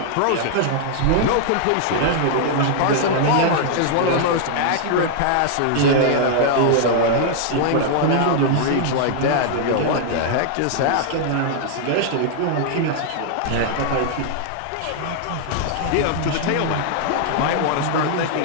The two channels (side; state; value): both; different; correlation -0.01